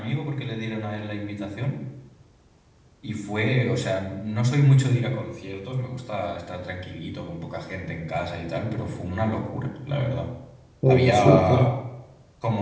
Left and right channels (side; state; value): both; identical; correlation 1.00